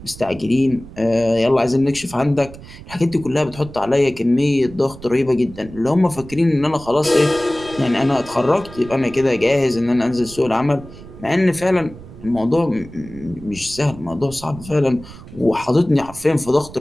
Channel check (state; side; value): noise; right; rumble, 17 dB below the sound